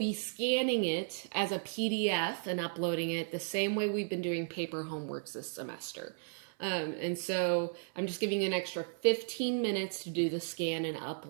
scanning it as a PDF and uploading it the same way we've been doing paper homeworks this semester. And so I'm just giving you an extra 15 minutes to do the scan and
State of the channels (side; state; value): left; silent; 55 dB below the other